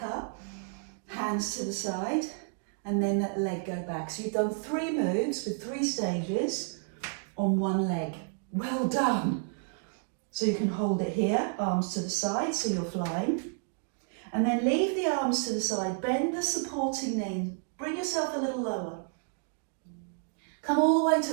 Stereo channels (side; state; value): left; silent; 57 dB below the other